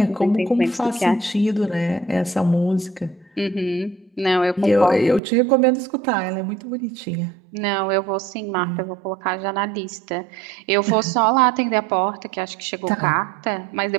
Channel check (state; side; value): drops out; left; at 5.2 s